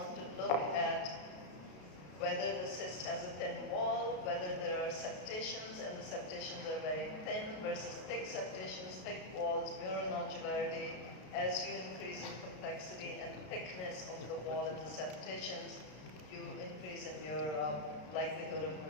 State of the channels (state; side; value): late; right; 33 ms